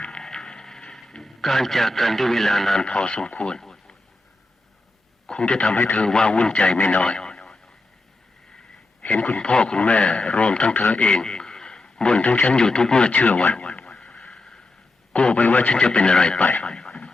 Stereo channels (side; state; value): right; quieter; 3.0 dB